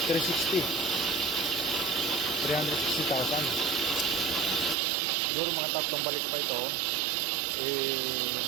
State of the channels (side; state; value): left; drops out; at 4.8 s